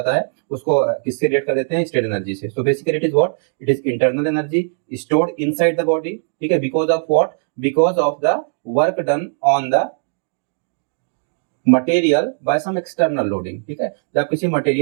है, उसको किससे रिलेट कर देते हैं, स्ट्रेन एनर्जी से। So basically it is what, it is internal energy stored inside the body. ठीक है, because of what, because of the work done on the material by some external loading. ठीक है, जब आप किसी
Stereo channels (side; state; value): left; silent; 66 dB below the other